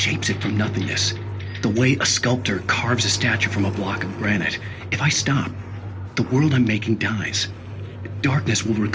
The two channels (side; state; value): both; identical; correlation 1.00